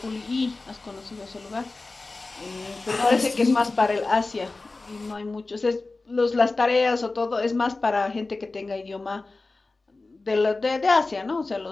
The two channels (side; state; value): right; quieter; 3.4 dB